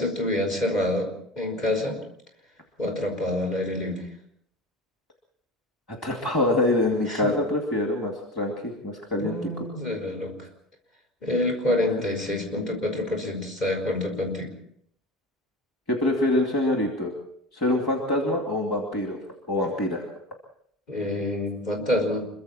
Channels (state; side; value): normal; both; correlation 0.31